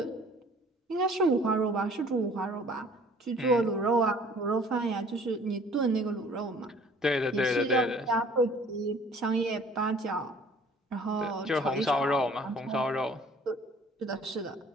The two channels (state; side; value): normal; both; correlation 0.53